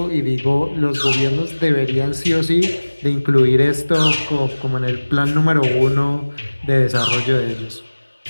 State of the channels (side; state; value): both; inverted; correlation -1.00